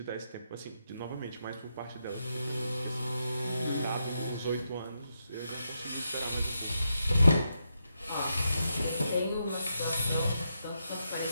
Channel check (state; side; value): inverted; both; correlation -0.84